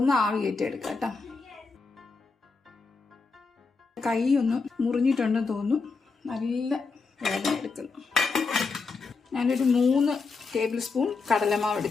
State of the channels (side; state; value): right; quieter; 4.4 dB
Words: ആവി കയറ്റി എടുക്കാം കേട്ടോ. കൈ ഒന്ന് മുറിഞ്ഞിട്ടുണ്ടെന്ന് തോന്നുന്നു. നല്ല വേദന എടുക്കുന്നു. ഞാനൊരു 3 ടേബിൾ സ്പൂൺ കടലമാവ്